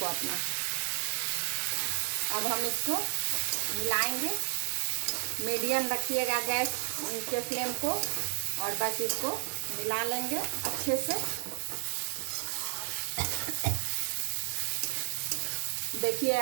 अपना। अब हम इसको मिलाएंगे। मीडियम रखिएगा गैस के फ्लेम को, और बस इसको मिला लेंगे अच्छे से। देखिए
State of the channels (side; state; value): left; silent; digital silence